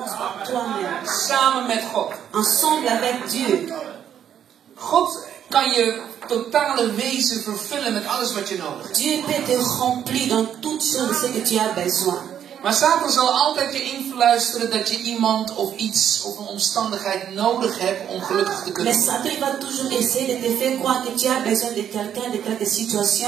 par toi-même. Samen met God. Ensemble avec Dieu. God kan je totale wezen vervullen met alles wat je nodig hebt. Dieu peut te remplir dans toutes choses de ce que tu as besoin. Maar Satan zal altijd je influisteren dat je iemand of iets of een omstandigheid nodig hebt om gelukkig te kunnen Mais worden. Satan il va toujours essayer de te faire croire que tu as besoin de quelqu'un, de quelque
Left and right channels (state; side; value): quieter; left; 9.4 dB